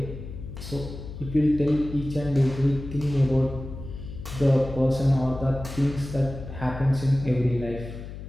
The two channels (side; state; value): left; noise; hum, 11 dB below the sound